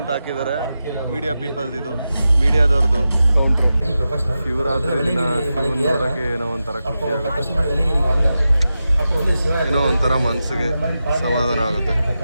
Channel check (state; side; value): inverted; both; correlation -0.91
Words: ಹಾಕಿದ್ದಾರೆ. ಮೀಡಿಯಾ ಪೀಪಲ್ದು ಇದು ಮೀಡಿಯಾದವ್ರದ್ದು ಕೌಂಟ್ರು. ಶಿವರಾತ್ರಿ ದಿನ ಶಿವನ್ ನೋಡೋಕ್ಕೆ ಏನೋ ಒಂಥರ ಖುಷಿ ಆಗುತ್ತೆ, ಏನೋ ಒಂಥರ ಮನಸ್ಸಿಗೆ ಸಮಾಧಾನ ಆಗುತ್ತೆ.